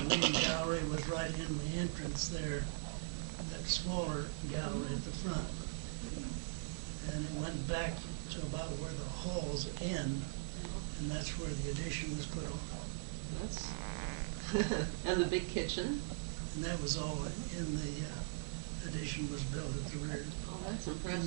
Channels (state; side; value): silent; left; 51 dB below the other